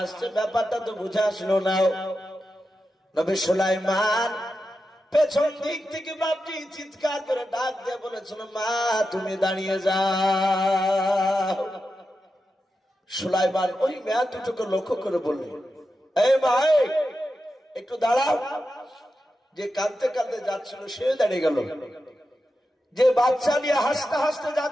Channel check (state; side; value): normal; both; correlation 0.89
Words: ব্যাপারটা তো বুঝে আসলো না। নবী সুলাইমান পেছন দিক থেকে বাপটি চিৎকার করে ডাক দিয়ে বলেছিল, মা তুমি দাঁড়িয়ে যাও। সুলাইমান ওই মেয়ে দুটোকে লক্ষ্য করে বললেন, এই ভাই একটু দাঁড়াও। যে কাঁদতে কাঁদতে যাচ্ছিল সে দাঁড়িয়ে গেল, যে বাচ্চা নিয়ে হাসতে হাসতে